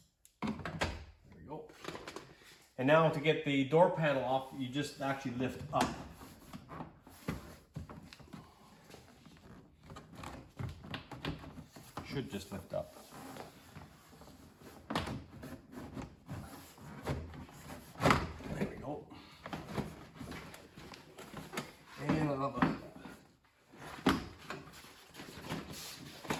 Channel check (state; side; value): identical; both; correlation 1.00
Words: There we go. And now to get the door panel off, you just actually lift up. Should just lift up. There we go. And another